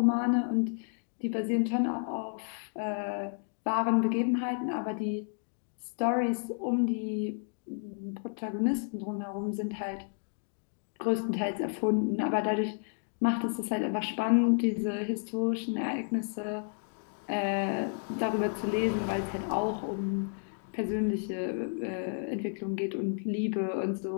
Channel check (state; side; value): silent; right; 57 dB below the other